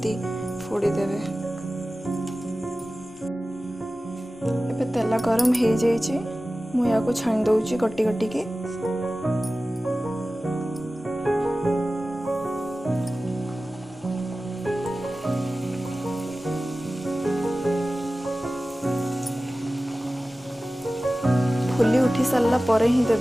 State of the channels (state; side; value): normal; both; correlation 0.96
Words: फोड़ी देबे। एबे तेल गरम हो जाइए। मु याको छाणी दउची गट्टी गट्टी के। फुली उठी सारा परे ही